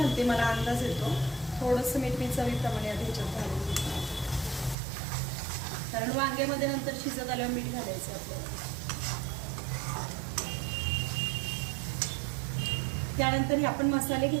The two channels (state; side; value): drops out; left; at 4.8 s